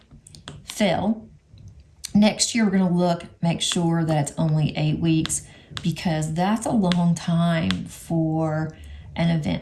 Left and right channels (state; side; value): identical; both; correlation 1.00